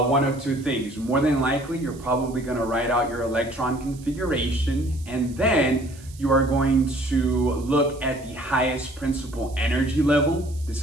of two things. More than likely, you're probably going to write out your electron configuration, and then you are going to look at the highest principal energy level. This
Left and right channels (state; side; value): noise; right; hiss, 22 dB below the sound